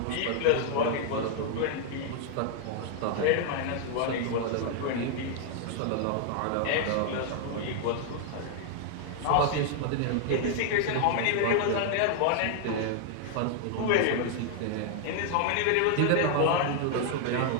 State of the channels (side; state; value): both; different; correlation 0.00